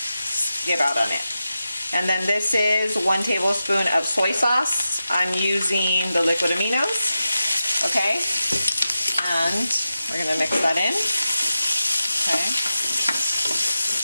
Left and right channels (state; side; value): inverted; both; correlation -0.91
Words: out on it. And then this is 1 tablespoon of soy sauce. I'm using the liquid aminos, okay? And we're gonna mix that in, okay?